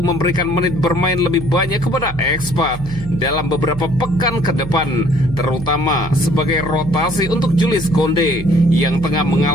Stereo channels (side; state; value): right; noise; hum, 11 dB below the sound